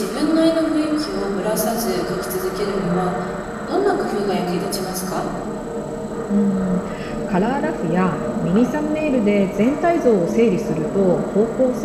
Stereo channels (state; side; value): identical; both; correlation 1.00